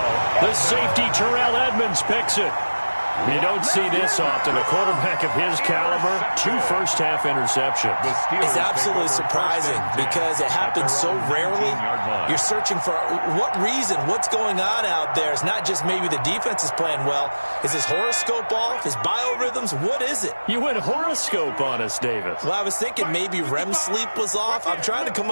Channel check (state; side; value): inverted; both; correlation -1.00